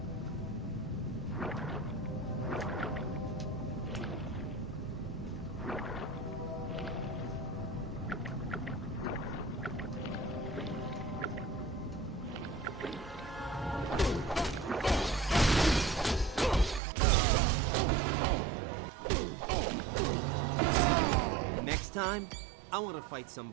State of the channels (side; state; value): left; drops out; at 16.8 s